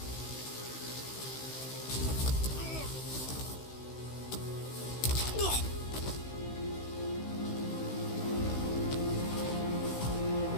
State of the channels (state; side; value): late; right; 16 ms